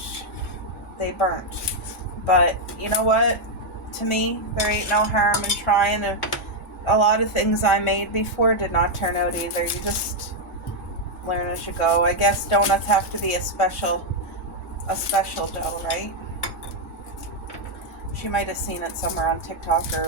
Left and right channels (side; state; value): both; normal; correlation 0.00